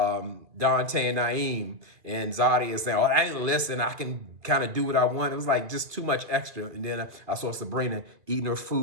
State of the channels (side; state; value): left; late; 2.4 ms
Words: and Naeem, and Zadi is saying, "Oh, I didn't listen. I can kind of do what I want." It was like just too much extra. And then I saw Sabrina eating her